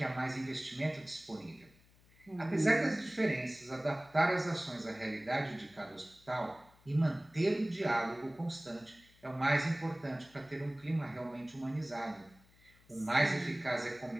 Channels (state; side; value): noise; left; hum, 28 dB below the sound